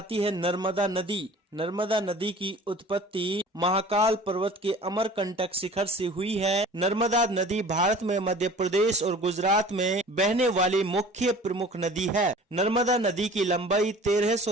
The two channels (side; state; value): both; normal; correlation 0.45